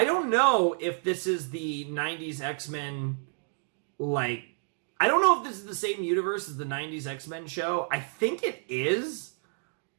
if this is the 90s X-Men, like, I don't know if this is the same universe as the 90s X-Men show. I think it is.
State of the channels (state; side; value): silent; left; 58 dB below the other